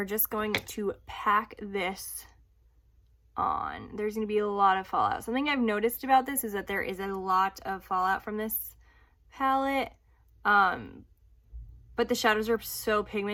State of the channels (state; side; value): identical; both; correlation 1.00